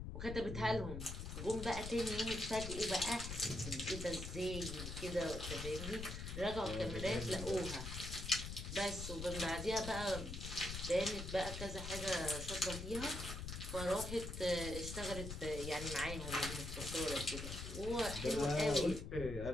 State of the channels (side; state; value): left; noise; rumble, 6 dB below the sound